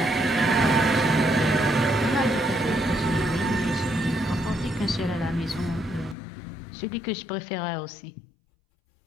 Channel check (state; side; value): drops out; right; at 6.2 s